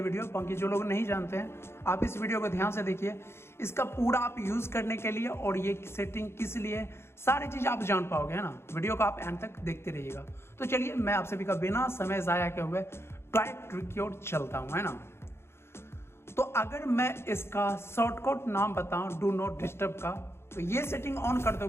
वीडियो, बाकी जो लोग नहीं जानते हैं आप इस वीडियो को ध्यान से देखिए। इसका पूरा आप यूज़ करने के लिए और ये सेटिंग किस लिए, सारी चीज़ आप जान पाओगे, है ना। वीडियो को आप एंड तक देखते रहिएगा। तो चलिए मैं आप सभी का बिना समय ज़ाया किए हुए ट्रिक की ओर चलता हूँ, है ना। तो अगर मैं इसका शॉर्टकट नाम बताऊँ डू नॉट डिस्टर्ब का, तो ये सेटिंग ऑन कर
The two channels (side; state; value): right; late; 0.12 ms